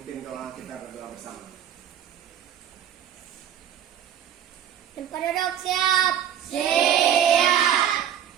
doa kita berdoa bersama. Penduduk siap. Siap.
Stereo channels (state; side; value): quieter; left; 9.7 dB